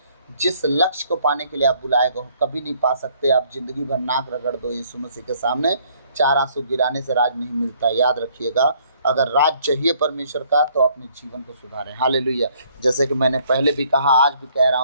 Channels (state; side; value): inverted; both; correlation -0.64